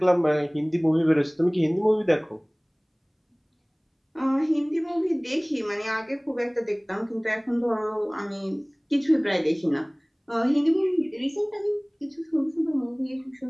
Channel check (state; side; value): identical; both; correlation 1.00